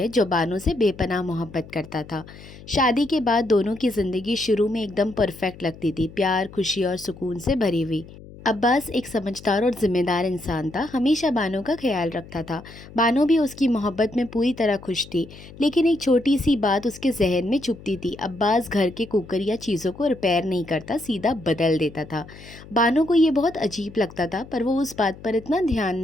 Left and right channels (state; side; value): noise; left; hum, 18 dB below the sound